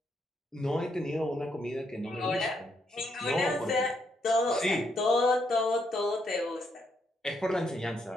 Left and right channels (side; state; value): both; normal; correlation 0.76